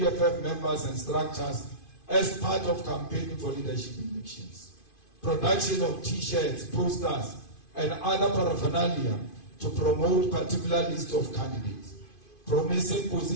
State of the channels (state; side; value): late; right; 2.5 ms